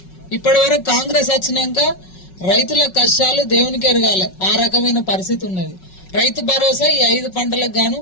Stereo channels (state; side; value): late; right; 5.4 ms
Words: ఇప్పటి వరకు కాంగ్రెస్ వచ్చినాక రైతుల కష్టాలు దేవునికి ఎరగాలి, ఆ రకమైన పరిస్థితి ఉన్నది. రైతు భరోసా ఈ 5 పంటలకు గాను